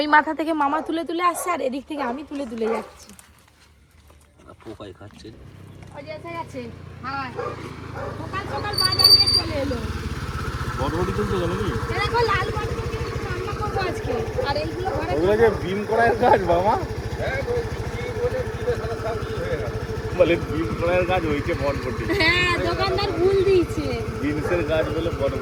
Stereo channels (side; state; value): both; identical; correlation 1.00